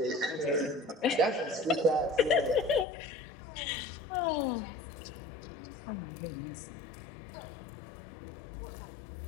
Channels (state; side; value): drops out; right; at 2.9 s